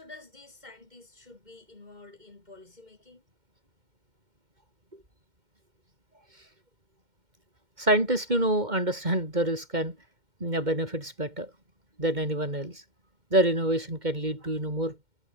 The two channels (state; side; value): late; left; 2.1 ms